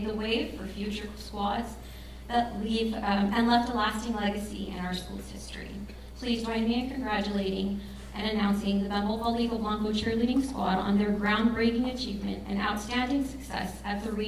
the way for future squads that leave and left a lasting legacy in our school's history. Please join me in congratulating and announcing the Bembo Palico Blanco cheerleading squad on their groundbreaking achievement and outstanding success at the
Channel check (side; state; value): both; identical; correlation 1.00